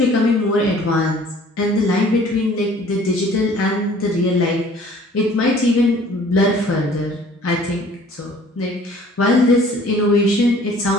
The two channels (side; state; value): both; normal; correlation 0.53